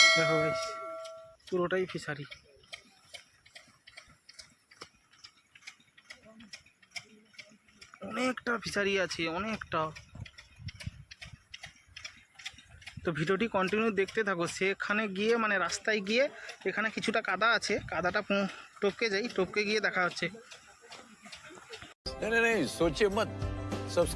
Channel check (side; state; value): both; identical; correlation 1.00